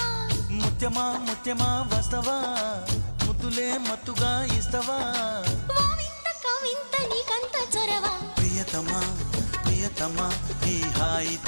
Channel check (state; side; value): inverted; both; correlation -1.00